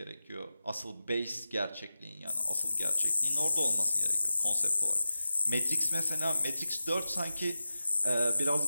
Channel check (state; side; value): inverted; both; correlation -0.94